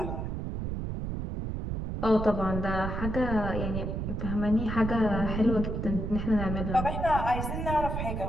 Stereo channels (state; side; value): noise; right; rumble, 3 dB below the sound